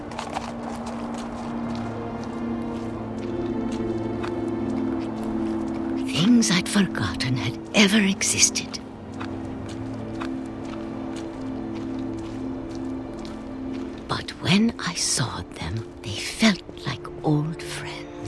Things I'd forgotten had ever existed. But when I saw them, they felt like old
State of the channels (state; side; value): identical; both; correlation 1.00